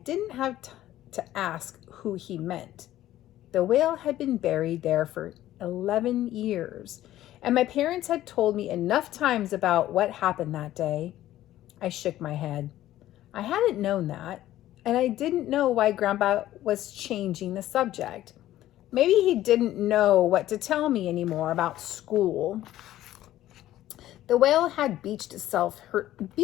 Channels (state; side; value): quieter; right; 13.9 dB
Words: have to ask who he meant. The whale had been buried there for 11 years, and my parents had told me enough times about what happened that day. I shook my head. I hadn't known that. And I didn't know why Grandpa was changing the subject. Maybe he didn't know what to tell me anymore about school. The whale had beached